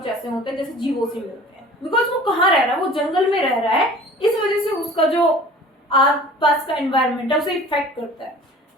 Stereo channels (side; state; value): both; normal; correlation 0.45